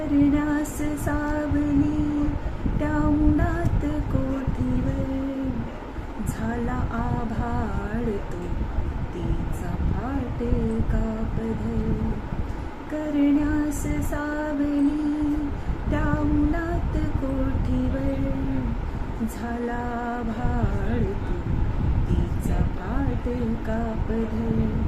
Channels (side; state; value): both; identical; correlation 1.00